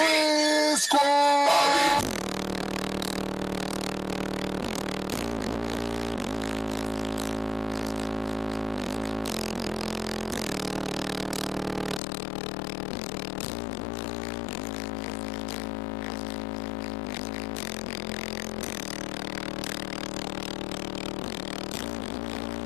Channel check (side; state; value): right; drops out; at 12.0 s